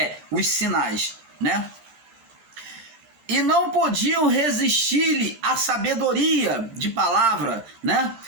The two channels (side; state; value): left; late; 14 ms